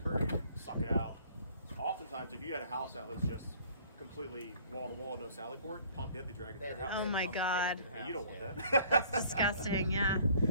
or suck it out. Oftentimes, if you had a house that was just completely wall to wall, no sally port, pump it, they drag it to your house. Oh my Pump it God. into the And you don't house, want yeah. that. That's disgusting. Yeah.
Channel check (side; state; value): both; inverted; correlation -0.56